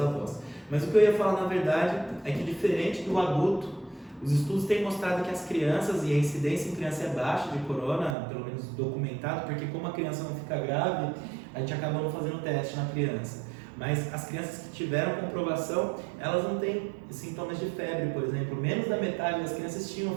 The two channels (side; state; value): left; drops out; at 8.2 s